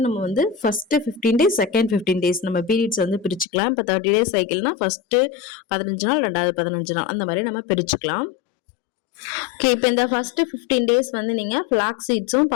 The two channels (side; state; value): right; drops out; at 3.5 s